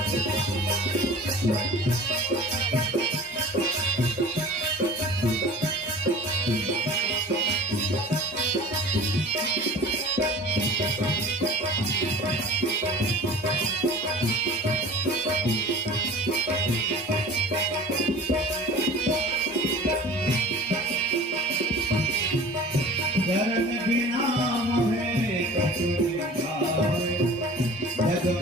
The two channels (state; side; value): normal; both; correlation 0.41